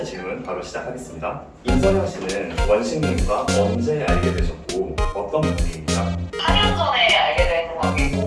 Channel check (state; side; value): identical; both; correlation 1.00